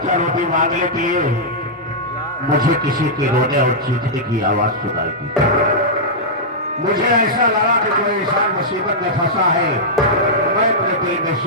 चार रोटी मांगने के लिए मुझे किसी के रोने और चीखने की आवाज सुनाई दी। मुझे ऐसा लगा कि कोई इंसान मुसीबत में फंसा है। मैं अपने दिल में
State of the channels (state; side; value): normal; both; correlation -0.10